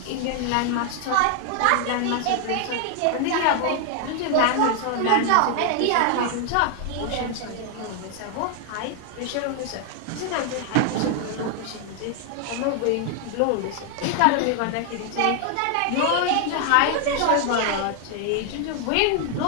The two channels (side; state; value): both; different; correlation 0.00